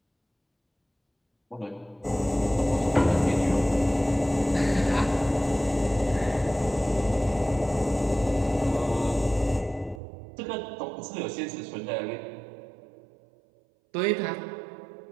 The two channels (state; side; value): drops out; left; at 10.0 s